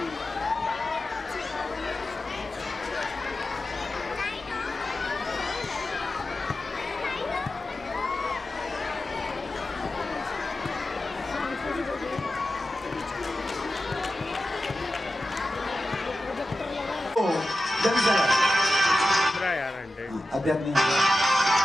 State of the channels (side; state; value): both; normal; correlation 0.93